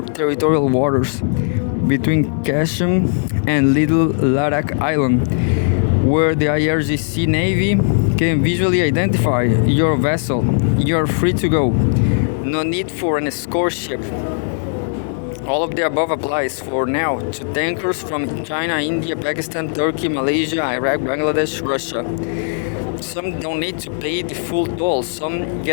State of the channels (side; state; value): right; silent; digital silence